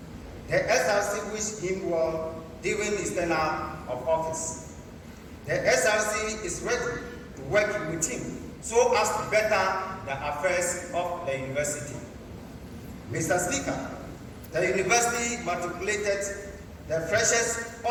The SRC wished him well during his tenure of office. The SRC is ready to work with him so as to better the affairs of the university. Mr. Speaker, the university matriculated the freshers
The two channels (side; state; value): both; identical; correlation 1.00